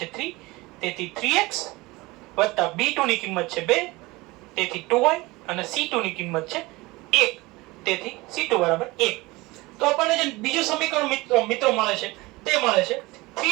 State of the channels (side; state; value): left; quieter; 22.0 dB